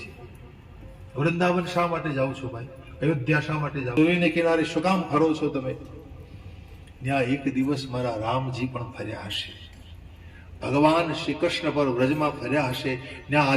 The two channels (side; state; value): both; identical; correlation 1.00